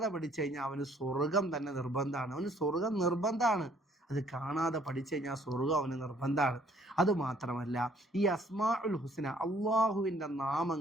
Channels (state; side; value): normal; both; correlation 0.62